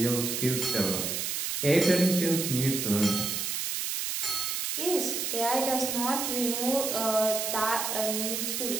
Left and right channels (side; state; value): right; noise; hiss, 1 dB below the sound